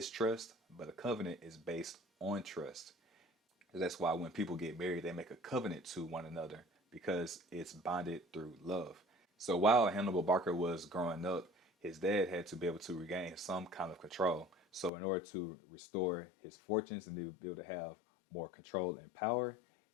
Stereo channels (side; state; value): right; drops out; at 14.9 s